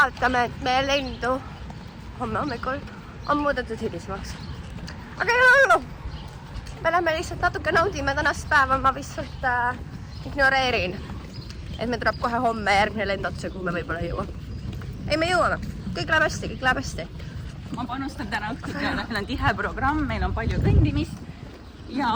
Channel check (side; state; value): both; identical; correlation 1.00